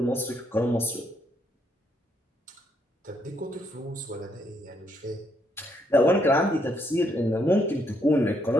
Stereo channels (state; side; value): normal; both; correlation 0.74